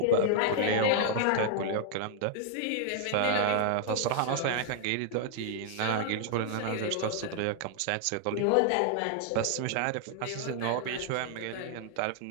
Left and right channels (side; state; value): both; different; correlation 0.00